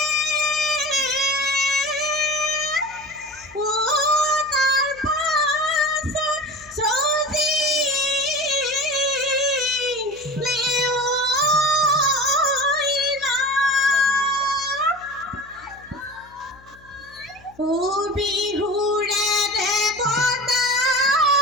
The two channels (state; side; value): noise; left; hum, 26 dB below the sound